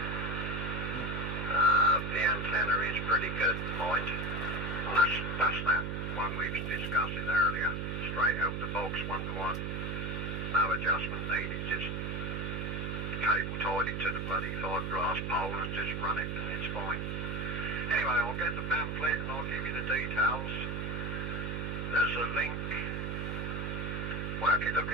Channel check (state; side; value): noise; right; hum, 2 dB below the sound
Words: the antenna is pretty good, mind. And that's that one we was discussing earlier. Straight out the box, 1-to-1. No adjustment needed, just cable tied it to the bloody fiberglass pole and just run it and it's fine. Anyway, I'll get the pamphlet and I'll give you the details. There's a link. Well, if you look